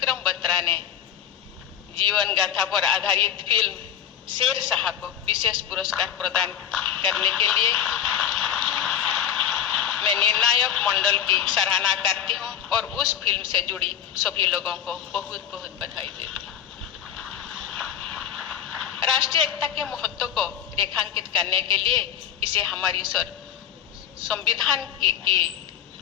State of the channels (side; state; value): right; quieter; 9.7 dB